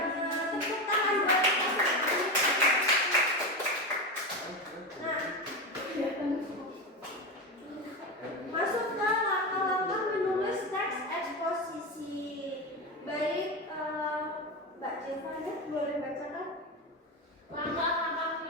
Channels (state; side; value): normal; both; correlation 0.18